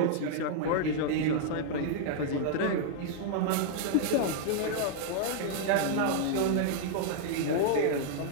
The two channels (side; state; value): both; different; correlation -0.01